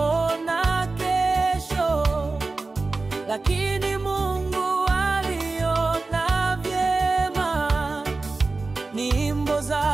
kesho, lakini Mungu aliona vyema. Nyimbo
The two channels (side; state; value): left; quieter; 3.6 dB